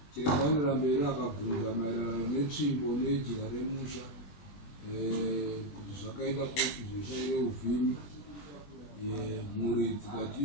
Chiremba anoenda mberi akabvunza maererano netsvimbo nejira remusha kuti zvakaita kuti zvishaire uvhimi. Mhuri dzikati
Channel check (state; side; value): late; right; 21 ms